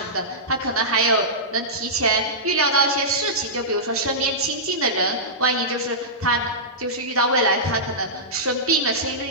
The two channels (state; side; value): normal; both; correlation -0.15